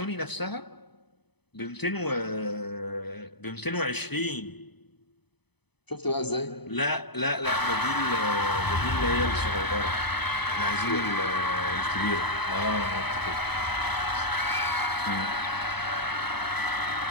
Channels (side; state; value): right; late; 0.98 ms